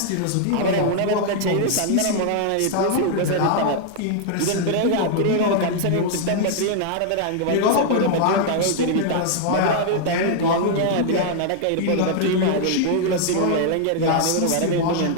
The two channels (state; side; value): different; both; correlation 0.00